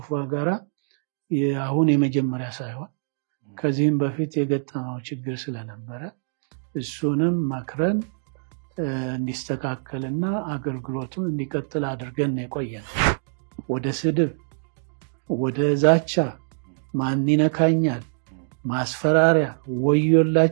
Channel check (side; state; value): left; silent; digital silence